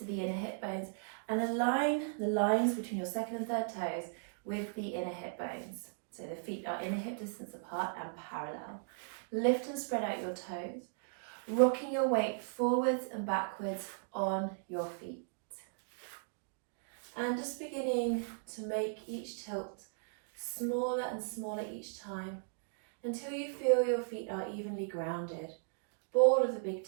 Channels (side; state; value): left; silent; digital silence